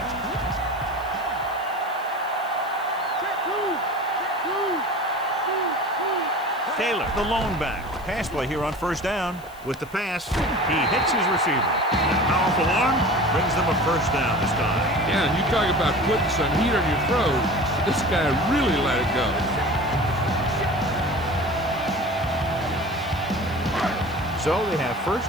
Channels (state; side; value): noise; left; hiss, 23 dB below the sound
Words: Taylor, the lone back. Pass play here on first down. With the pass, he hits his receiver. That powerful arm brings them a first down this time. Yeah, and you talk about putting some heat on your throat. This guy really let it go. So they have 1st